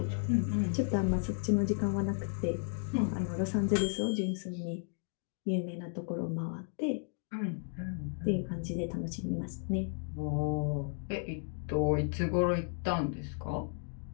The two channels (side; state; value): right; silent; 55 dB below the other